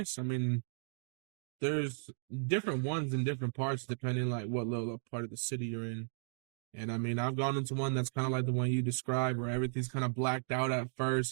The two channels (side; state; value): left; silent; digital silence